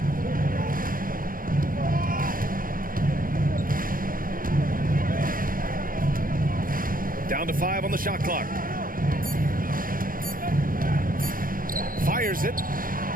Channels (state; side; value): late; left; 0.41 ms